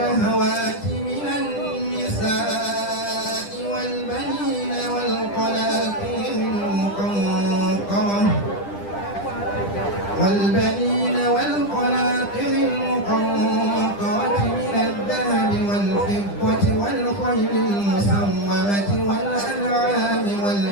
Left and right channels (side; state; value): right; late; 10 ms